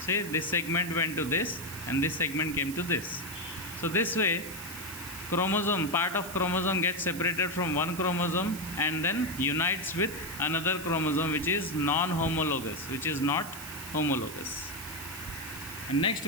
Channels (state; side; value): noise; right; hiss, 11 dB below the sound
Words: this segment went to this and this segment came to this. So this way part of chromosome gets separated from one chromosome and then unites with another chromosome which is non-homologous, which is not homologous. And next